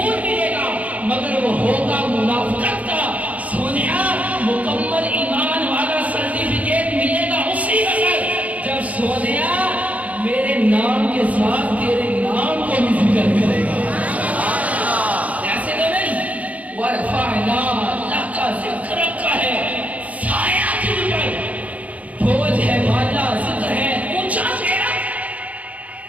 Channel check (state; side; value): late; left; 0.069 ms